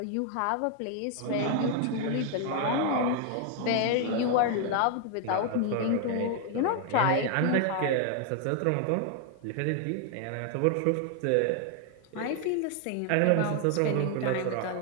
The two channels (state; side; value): different; both; correlation 0.00